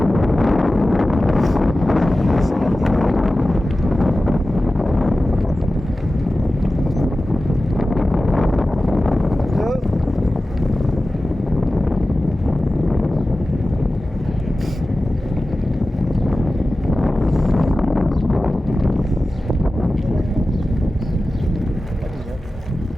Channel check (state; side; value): normal; both; correlation 0.95